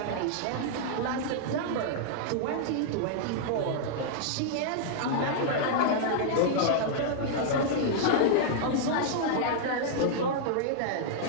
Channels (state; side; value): different; both; correlation -0.01